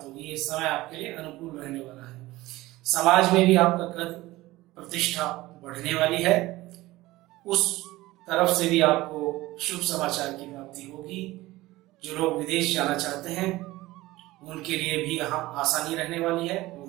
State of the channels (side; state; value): left; quieter; 18.4 dB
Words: होगी। ये समय आपके लिए अनुकूल रहने वाला है। समाज में भी आपका कद प्रतिष्ठा बढ़ने वाली है। उस तरफ से भी आपको शुभ समाचार की प्राप्ति होगी। जो लोग विदेश जाना चाहते हैं उनके लिए भी यहाँ आसानी रहने वाली है। वो